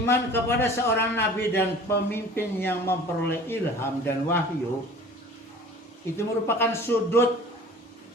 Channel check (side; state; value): both; normal; correlation 0.44